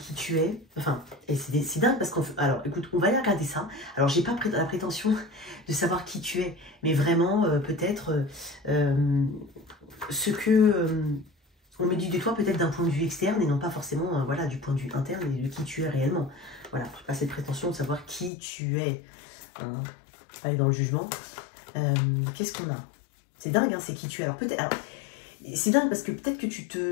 tu es. Enfin, et c'est dingue parce qu'on... Alors, écoute, on va aller regarder ça. Alors, j'ai pas la prétention de savoir qui tu es, mais vraiment, peut-être ce que on me dit de toi, peut-être d'un point de vue externe et non pas forcément voilà, du point de vue interne et de qui tu es réellement. Voilà, je n'ai pas cette prétention de savoir qui tu es. Hein. Aller dans le jugement. Qu'est-ce qu'on a? C'est dingue, hein, c'est qui tu es. Alors, peut-être... C'est dingue parce que peut-être que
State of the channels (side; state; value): right; drops out; at 18.3 s